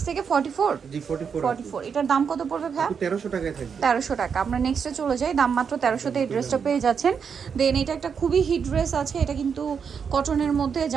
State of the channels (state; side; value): quieter; left; 6.6 dB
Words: থেকে 44। জি 44। এটার দাম কত পড়বে ভাই? 1300 টাকায় থাকবে। 1300 টাকা। আমরা নেক্সটে চলে যাই। দাম মাত্র 1300 তে এই ড্রেসটা পেয়ে যাচ্ছেন। দেন এটা একটা খুবই হিট ড্রেস আছে। এটা কিন্তু কটনের মধ্যে,